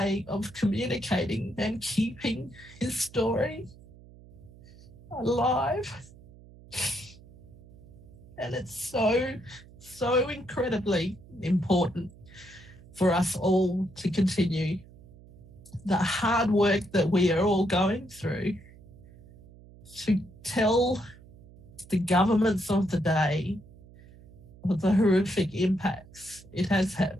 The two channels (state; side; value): noise; right; hum, 22 dB below the sound